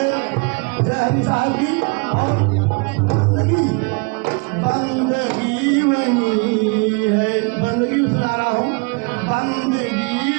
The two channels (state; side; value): quieter; left; 31.9 dB